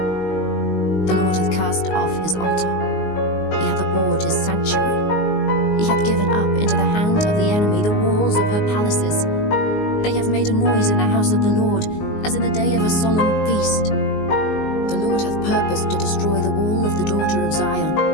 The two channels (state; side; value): late; right; 19 ms